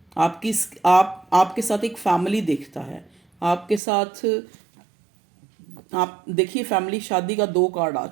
आपके साथ एक फैमिली देखता है, आपके साथ। आप देखिए फैमिली, शादी का 2 कार्ड आ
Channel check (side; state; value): left; drops out; at 3.8 s